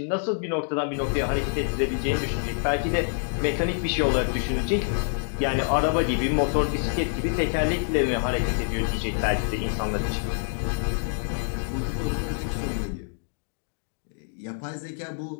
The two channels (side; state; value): right; silent; 61 dB below the other